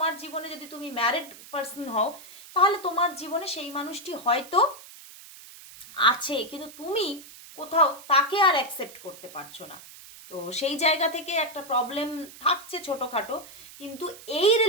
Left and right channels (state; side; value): noise; right; hiss, 18 dB below the sound